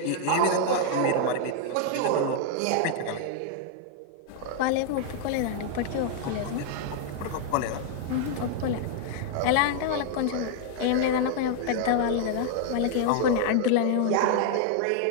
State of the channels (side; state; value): both; different; correlation 0.00